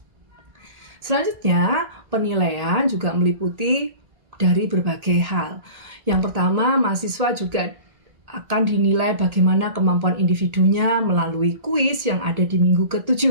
Selanjutnya, penilaian juga meliputi dari berbagai hal. Yang pertama, mahasiswa juga akan dinilai bagaimana kemampuan individunya melalui kuis yang ada di minggu ke-7.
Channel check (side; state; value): left; late; 1.8 ms